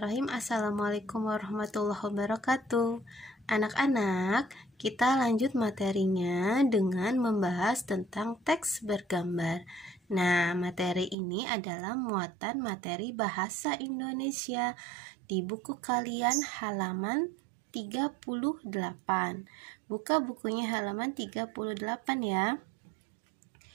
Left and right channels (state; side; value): drops out; left; at 11.2 s